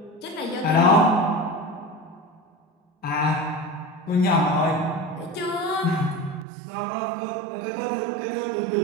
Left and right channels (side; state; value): left; drops out; at 6.5 s